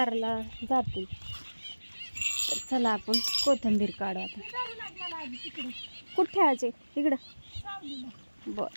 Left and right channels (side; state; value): both; inverted; correlation -1.00